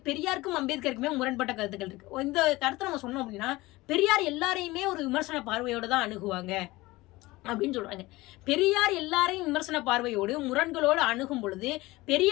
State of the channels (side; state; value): right; quieter; 20.0 dB